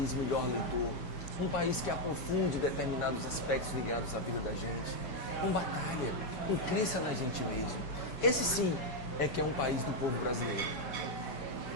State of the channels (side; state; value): right; late; 5.1 ms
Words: melhor leitor, um país que aprofunde determinados aspectos ligados à vida da gente, com batalha, com crença na gente mesmo. Esse sim é que é um país do povo brasileiro.